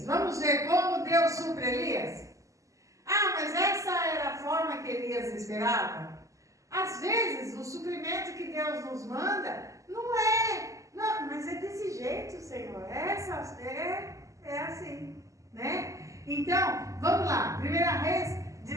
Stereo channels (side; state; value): left; late; 0.16 ms